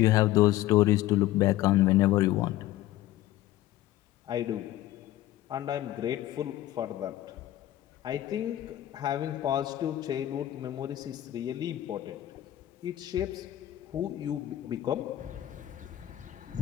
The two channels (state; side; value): quieter; right; 14.3 dB